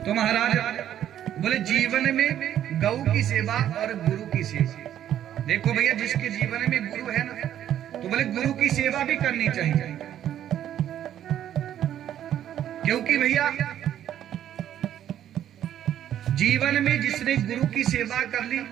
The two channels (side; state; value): left; quieter; 10.9 dB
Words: तो महाराज बोले जीवन में गौ की सेवा और गुरु की सेवा, देखो भैया जिसके जीवन में गुरु है ना, तो बोले गुरु की सेवा भी करनी चाहिए, क्योंकि भैया जीवन में जिसने गुरु की सेवा कर ली